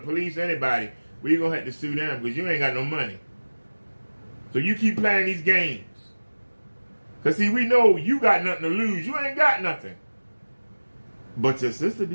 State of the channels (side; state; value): both; inverted; correlation -1.00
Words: anybody, we're going to have to sue them because you ain't got no money. So you keep playing these games. Because see, we know you got nothing to lose. You ain't got nothing. But your sister